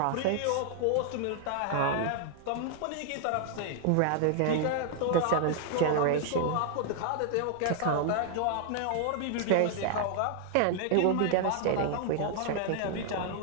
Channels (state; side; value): different; both; correlation 0.00